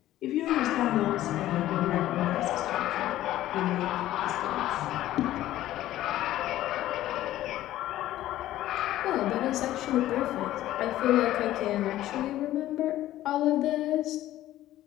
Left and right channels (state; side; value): quieter; right; 14.1 dB